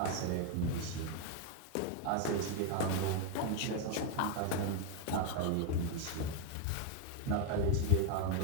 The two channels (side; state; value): both; different; correlation 0.02